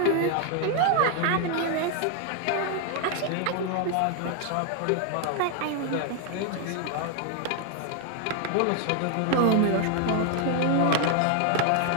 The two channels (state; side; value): different; both; correlation 0.00